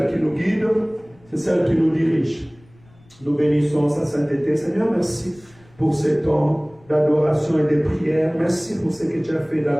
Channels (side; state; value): left; noise; rumble, 29 dB below the sound